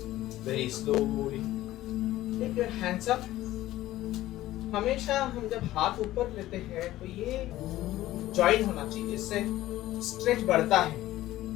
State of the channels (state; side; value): quieter; right; 15.3 dB